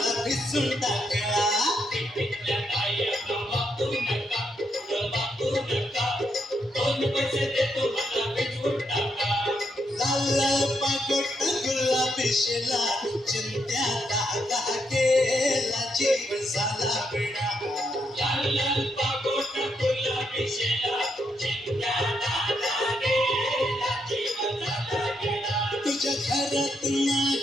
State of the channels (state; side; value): normal; both; correlation 0.79